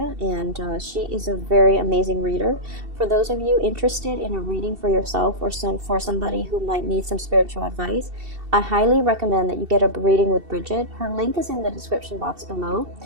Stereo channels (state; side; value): late; left; 2.7 ms